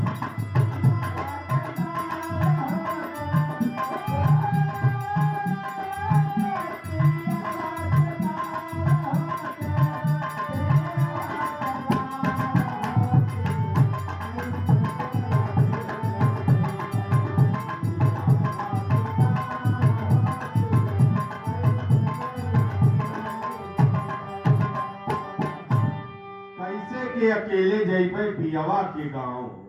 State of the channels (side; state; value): both; identical; correlation 1.00